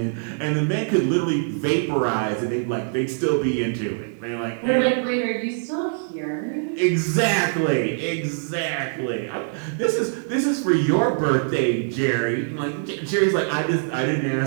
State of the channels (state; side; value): silent; left; digital silence